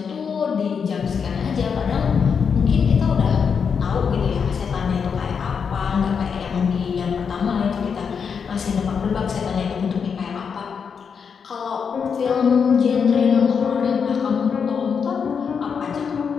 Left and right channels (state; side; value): quieter; right; 6.4 dB